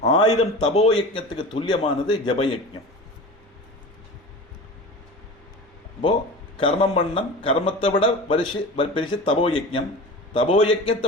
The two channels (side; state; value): both; normal; correlation 0.33